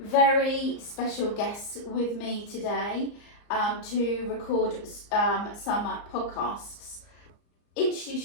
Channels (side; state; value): right; late; 34 ms